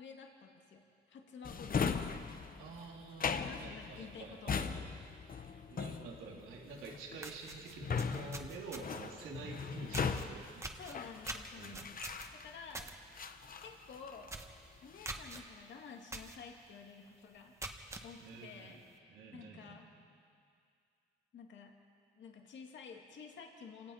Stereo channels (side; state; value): right; quieter; 3.9 dB